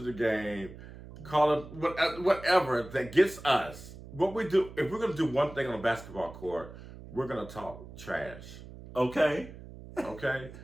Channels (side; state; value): right; noise; hum, 15 dB below the sound